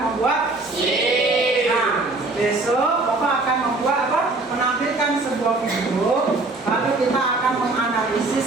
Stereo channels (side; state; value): left; quieter; 3.2 dB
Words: membuat SIM. Nah, besok Bapak akan membuat apa? Menampilkan sebuah video, lalu kita akan